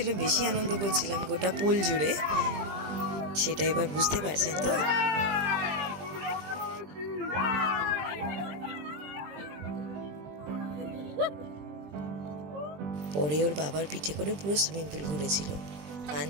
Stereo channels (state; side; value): late; left; 20 ms